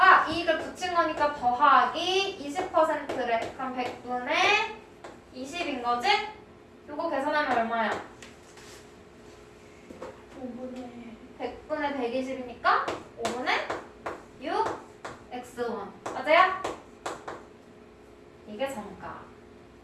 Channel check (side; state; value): both; identical; correlation 1.00